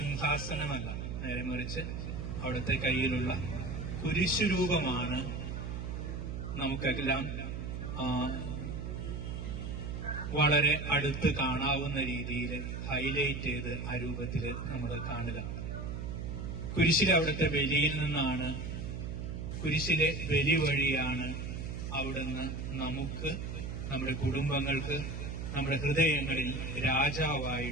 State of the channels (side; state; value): right; noise; hum, 5 dB below the sound